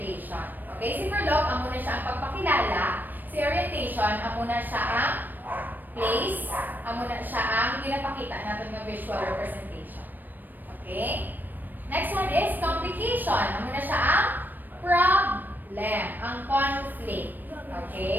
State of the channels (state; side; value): late; left; 0.090 ms